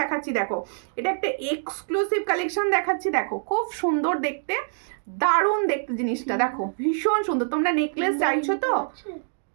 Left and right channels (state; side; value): silent; left; digital silence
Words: দেখো এটা একটা এক্সক্লুসিভ কালেকশন দেখাচ্ছি। দেখো খুব সুন্দর দেখতে, দারুণ দেখতে জিনিসটা। দেখো ভীষণ সুন্দর। তোমরা নেকলেস চাইছো তো?